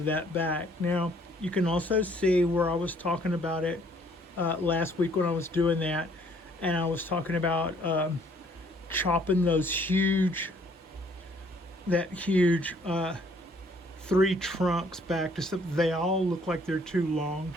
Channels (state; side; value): normal; both; correlation 0.62